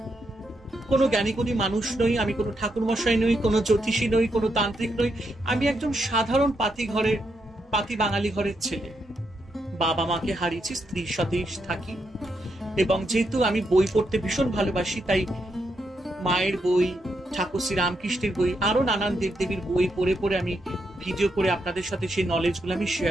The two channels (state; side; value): normal; both; correlation 0.81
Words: কোনো জ্ঞানীগুণী মানুষ নই, আমি কোনো ঠাকুরমশাই নই, কোনো জ্যোতিষী নই, কোনো তান্ত্রিক নই। আমি একজন সাধারণ পাতি বাঙালি ঘরের ছেলে। বাবা মাকে হারিয়েছি, স্ত্রীর সাথেই থাকি এবং যেহেতু আমি বই পড়তে ভীষণ ভালোবাসি, তাই মায়ের বই, ঠাকুর শ্রী রামকৃষ্ণের বই, আরো নানান দেবদেবীর বই পড়ে পড়ে আমি ভিডিও করে আপনাদের সাথে সেই নলেজগুলো আমি